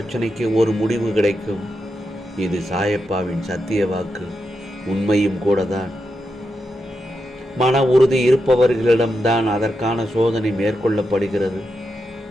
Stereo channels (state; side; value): normal; both; correlation 0.86